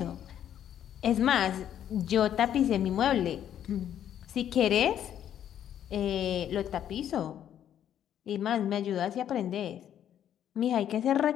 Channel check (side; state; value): right; quieter; 10.2 dB